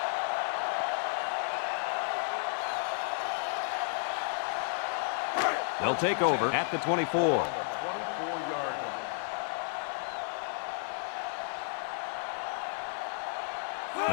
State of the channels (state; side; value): silent; right; 56 dB below the other